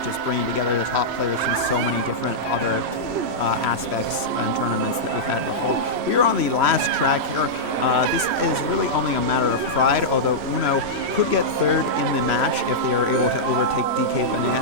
bringing together the top players from so many different other aspects and tournaments that we've had before. We are on the last track here. This is really only a matter of pride, although Uno could get 3rd in the match if they are able to overtake DK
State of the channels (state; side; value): late; left; 3.0 ms